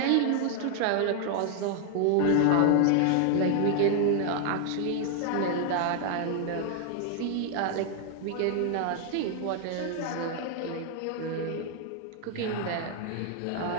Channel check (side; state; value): both; different; correlation 0.00